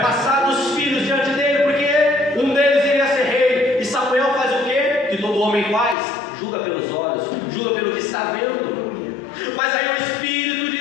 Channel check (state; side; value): drops out; right; at 6.0 s